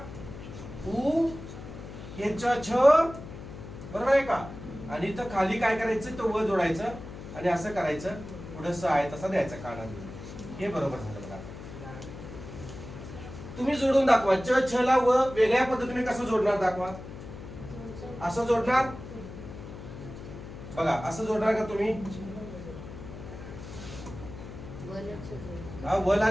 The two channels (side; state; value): left; noise; hum, 12 dB below the sound